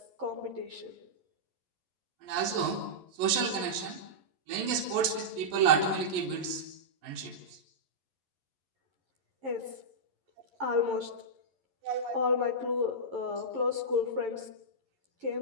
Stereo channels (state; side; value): late; left; 11 ms